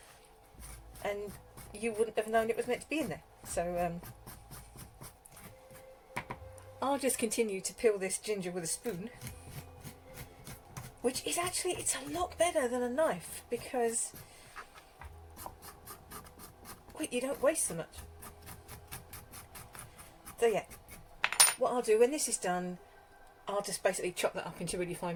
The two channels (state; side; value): identical; both; correlation 1.00